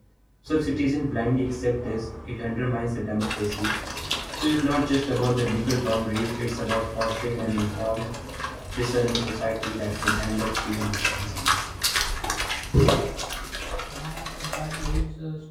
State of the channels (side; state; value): both; identical; correlation 1.00